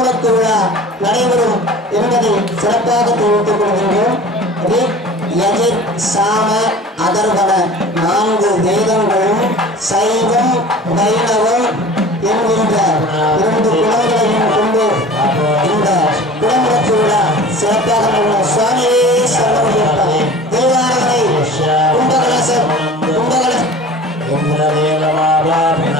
விழா நடைபெறும் என்பதை சிறப்பாக தெரிவித்துக் கொள்கின்றோம். சாம அதர்வன 4 வேதங்களும் சைவம் வைணவம் என்கின்ற 2 குலங்களையும் கொண்டு இந்த குடமுழுக்கு விழா சிறப்பாக சுவாமியே சரணம் தேவாரங்களை கும்பகலசம்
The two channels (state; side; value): normal; both; correlation 0.41